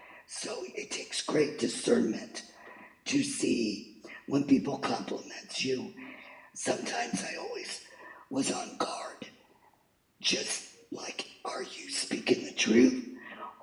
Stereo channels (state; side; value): identical; both; correlation 1.00